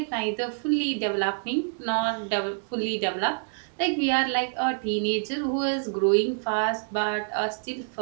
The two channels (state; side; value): silent; left; digital silence